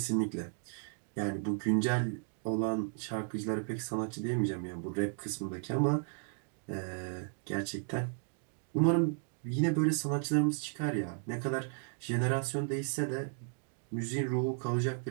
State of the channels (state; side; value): silent; left; 55 dB below the other